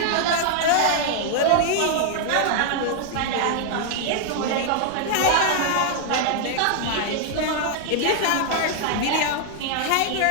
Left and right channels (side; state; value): both; different; correlation 0.00